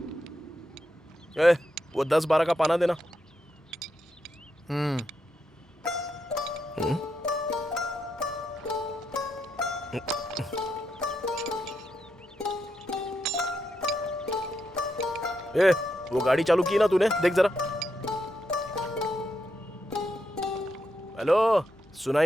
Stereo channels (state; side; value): normal; both; correlation 0.83